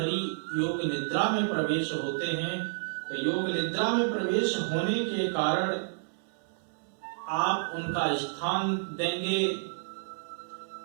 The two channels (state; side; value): silent; left; 58 dB below the other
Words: योग निद्रा में प्रवेश होते हैं। तो योग निद्रा में प्रवेश होने के कारण आप उनका स्थान देंगे